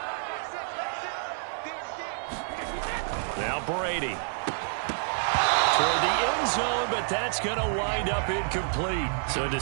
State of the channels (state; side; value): silent; left; digital silence